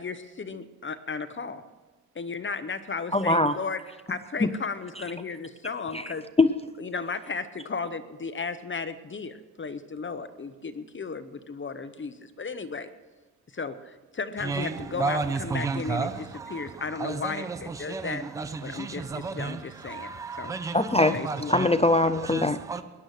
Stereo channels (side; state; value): both; normal; correlation 0.36